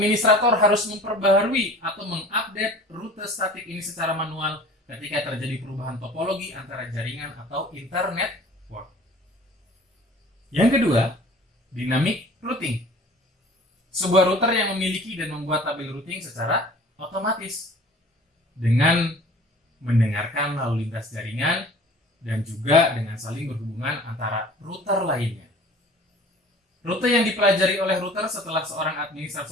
harus memperbaharui atau mengupdate rute statik ini secara manual ketika terjadi perubahan topologi antara jaringan atau internet network. Yang kedua, dynamic routing. Sebuah router yang memiliki dan membuat tabel routing secara otomatis dengan mendengarkan lalu lintas jaringan dan juga dengan saling berhubungan antara router lainnya. Rute yang dipelajari oleh router setelah seorang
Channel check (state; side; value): normal; both; correlation 0.46